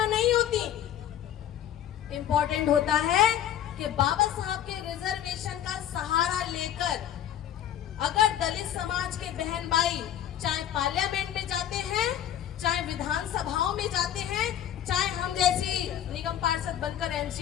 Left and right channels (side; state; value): right; quieter; 10.7 dB